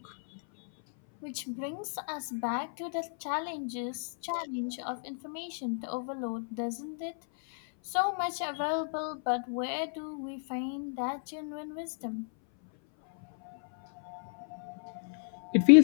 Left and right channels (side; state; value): right; silent; 56 dB below the other